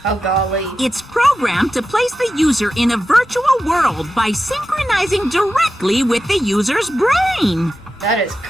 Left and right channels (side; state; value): both; normal; correlation 0.91